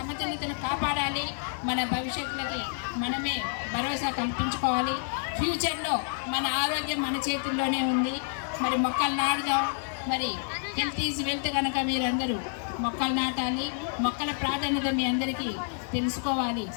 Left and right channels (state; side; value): silent; right; 57 dB below the other